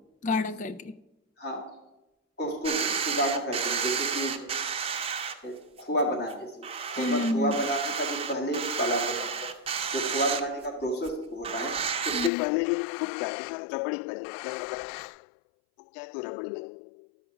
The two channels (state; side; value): drops out; right; at 12.3 s